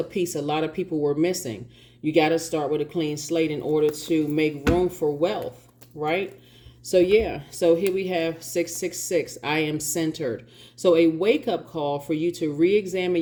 piece a lot of people were missing. You got to start with a clean slate in order to make room for wealth, right? So yeah, so here we have 666, I am centered. So a wake-up call for you to re-examine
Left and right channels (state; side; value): identical; both; correlation 1.00